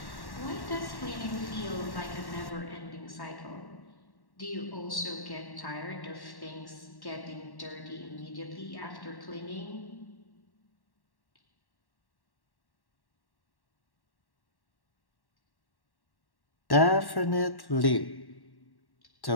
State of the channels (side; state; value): right; late; 1.1 ms